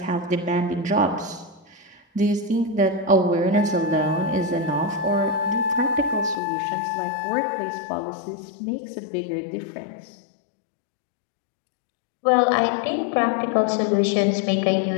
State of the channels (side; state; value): right; drops out; at 6.4 s